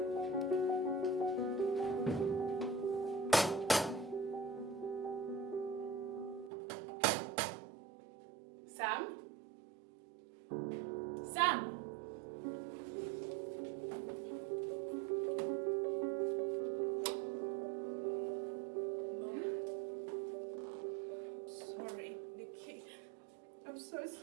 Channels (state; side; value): drops out; left; at 6.5 s